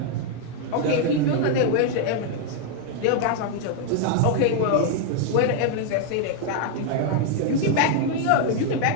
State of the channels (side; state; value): both; different; correlation 0.00